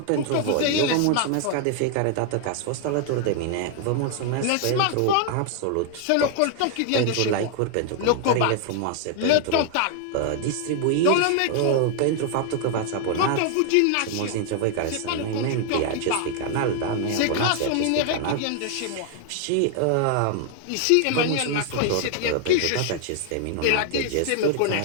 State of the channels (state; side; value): different; both; correlation 0.00